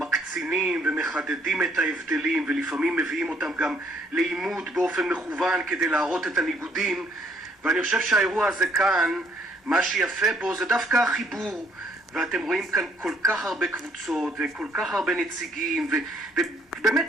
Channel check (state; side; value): normal; both; correlation 0.65